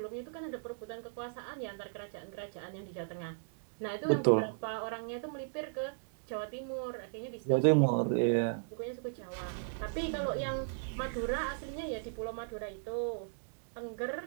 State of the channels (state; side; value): silent; left; digital silence